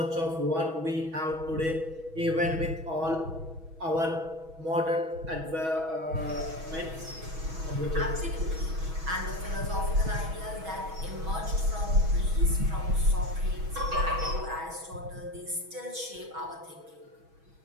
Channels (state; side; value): late; left; 6.2 ms